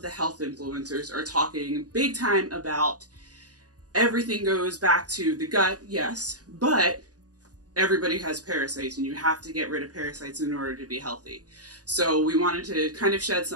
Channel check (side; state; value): left; late; 0.68 ms